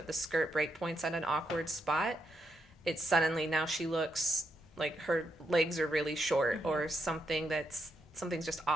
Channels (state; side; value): normal; both; correlation 0.81